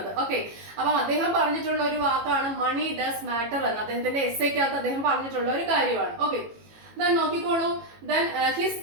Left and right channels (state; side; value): late; left; 18 ms